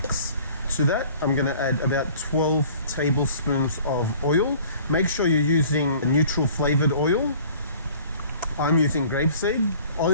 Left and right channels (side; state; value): both; inverted; correlation -0.50